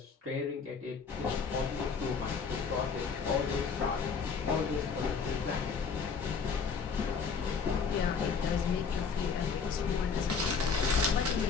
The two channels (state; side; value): quieter; right; 5.6 dB